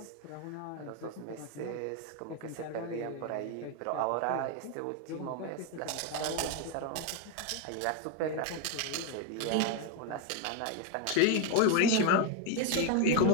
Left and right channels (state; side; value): different; both; correlation 0.01